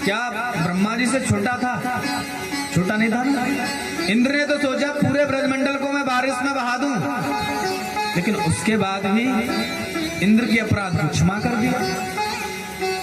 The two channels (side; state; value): both; identical; correlation 1.00